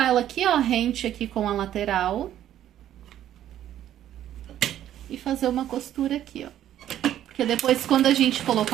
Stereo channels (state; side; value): quieter; left; 11.6 dB